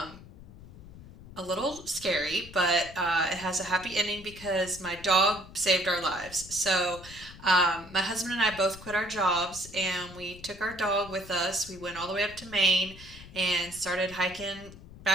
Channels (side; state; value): left; noise; rumble, 18 dB below the sound